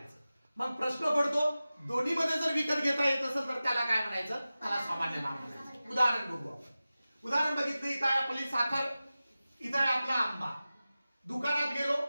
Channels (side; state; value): both; inverted; correlation -0.96